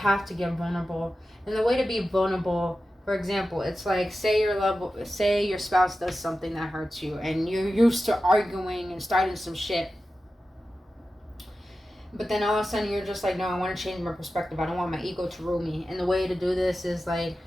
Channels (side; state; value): both; normal; correlation 0.93